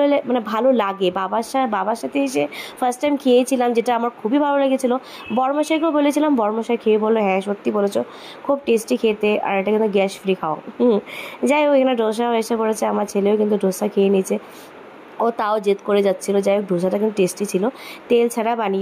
মানে ভালো লাগে। বাবার সাথে এসে ফার্স্ট টাইম খেয়েছিলাম, যেটা আমার খুবই ভালো লেগেছিলো। বড়মশাইকেও বলেছিলাম, বড়মশাই খেয়ে বললো হ্যাঁ সত্যি বলেছো, খুব টেস্টি খেতে, আর এটা কিন্তু গ্যাস ফ্রি খাও। যাই হোক, এখানে ডোসাও এসে পড়েছে, আমার ছেলেও কিন্তু ডোসা খেয়ে নিয়েছে। ও তাও জেদ করে যাচ্ছিলো। যাই হোক, ডোসাটা কিন্তু টেস্টি ছিল, তেল ছাড়া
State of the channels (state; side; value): identical; both; correlation 1.00